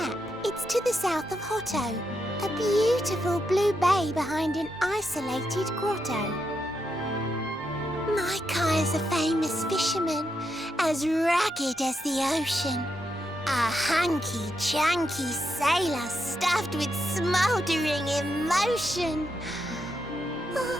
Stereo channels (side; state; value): both; normal; correlation 0.83